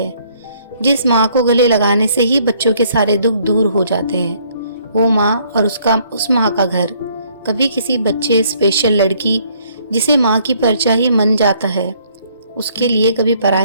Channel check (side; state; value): both; inverted; correlation -0.64